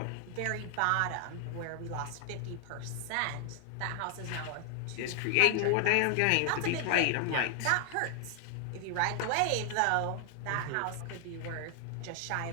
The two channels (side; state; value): both; different; correlation 0.00